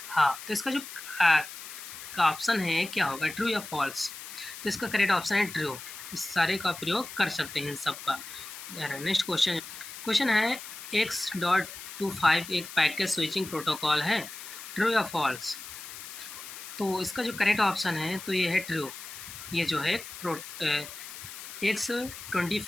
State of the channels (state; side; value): noise; left; hiss, 12 dB below the sound